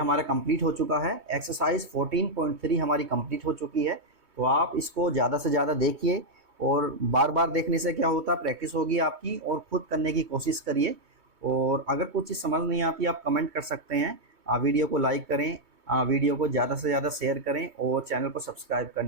कंप्लीट हो चुका है। एक्सरसाइज 14.3 हमारी कंप्लीट हो चुकी है। तो आप इसको ज़्यादा से ज़्यादा देखिए, और बार बार देखने से क्या होता है, प्रैक्टिस होगी आपकी, और खुद करने की कोशिश करिए। और अगर कुछ चीज़ समझ नहीं आती आप कमेंट कर सकते हैं। वीडियो को लाइक करें, वीडियो को ज़्यादा से ज़्यादा शेयर करें, और चैनल को सब्सक्राइब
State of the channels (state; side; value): late; left; 3.2 ms